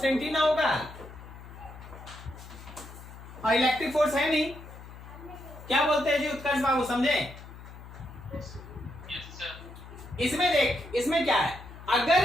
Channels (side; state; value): left; noise; hum, 15 dB below the sound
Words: ही ना होगा, और इलेक्ट्रिक फोर्स है नहीं। क्या बोलते हैं जी उत्कर्ष बाबू, समझे? इसमें देख, इसमें क्या है,